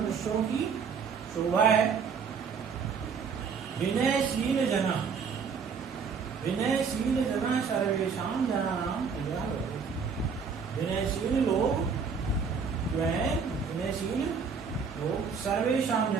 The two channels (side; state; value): left; quieter; 5.8 dB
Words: की शोभा है। विनयशील जना, विनयशील जना सर्वेषां जनानां प्रियः भवति। विनयशील लोग जो है, विनयशील लोग सर्वेषां